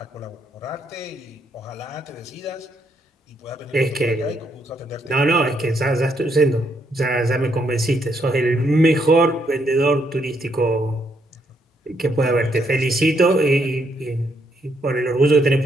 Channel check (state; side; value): normal; both; correlation 0.75